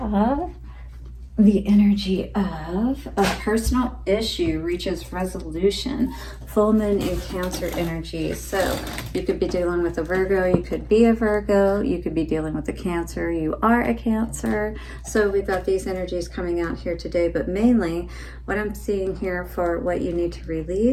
the energy of a personal issue reaches resolution. Full moon in Cancer energy. So you could be dealing with a Virgo, you could be a Virgo, you could be dealing with a Cancer, you are a Cancer. So we've got these energies coming out here today, but mainly what I'm seeing here for what you need to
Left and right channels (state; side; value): identical; both; correlation 1.00